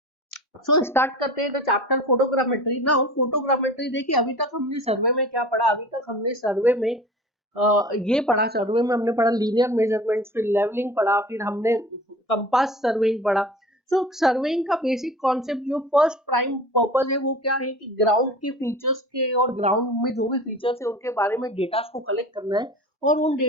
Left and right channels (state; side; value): normal; both; correlation 0.39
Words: सो स्टार्ट करते हैं the chapter photogrammetry. Now photogrammetry देखिए, अभी तक हमने सर्वे में क्या पढ़ा, अभी तक हमने सर्वे में ये पढ़ा, सर्वे में हमने पढ़ा लीनियर मेजरमेंट्स, फिर लेवलिंग पढ़ा, फिर हमने कंपास सर्वेइंग पढ़ा। सो सर्वेइंग का बेसिक कॉन्सेप्ट जो फर्स्ट प्राइम पर्पस है वो क्या है कि ग्राउंड के फीचर्स के और ग्राउंड में जो भी फीचर्स है उनके बारे में डेटा को कलेक्ट करना है, और उन